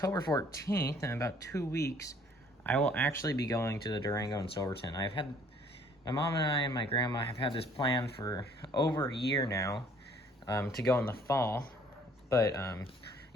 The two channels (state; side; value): normal; both; correlation 0.58